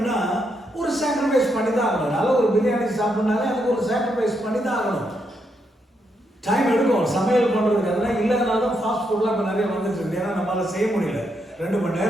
ஒரு sacrifice பண்ணி தான் ஆகணும். நல்ல ஒரு பிரியாணி சாப்பிட்னாலே அதுக்கு ஒரு சாக்ரிஃபைஸ் பண்ணி தான் ஆகணும். டைம் எடுக்கும் சமையல் பண்ணுறதுக்கு. அதெல்லாம் இல்லாதனால தான் ஃபாஸ்ட் ஃபுட்லாம் இப்போ நிறைய வந்துட்டு இருக்கு. ஏன்னா நம்மளால் செய்ய முடியல. 2 மணி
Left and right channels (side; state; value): both; normal; correlation 0.79